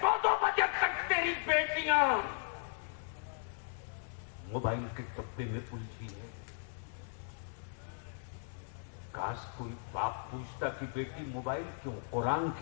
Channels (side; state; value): right; silent; digital silence